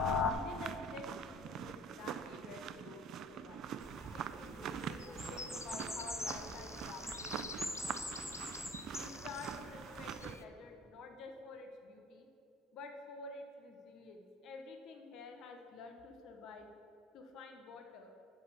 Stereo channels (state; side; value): normal; both; correlation 0.46